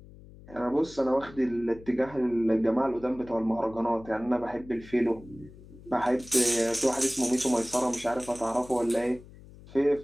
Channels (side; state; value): left; noise; hum, 20 dB below the sound